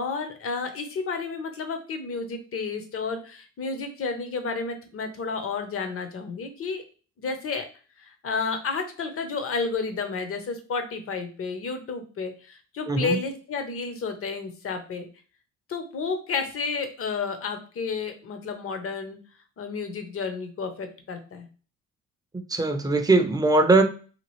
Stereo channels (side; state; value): both; normal; correlation 0.30